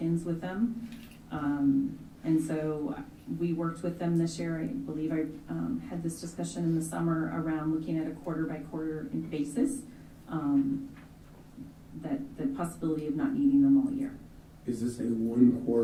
with them. And so we worked with them this year. I believe I had this discussion in the summer around looking at a quarter by quarter basis, that the possibility of not needing them all year. Is this a 1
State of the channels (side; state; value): both; identical; correlation 1.00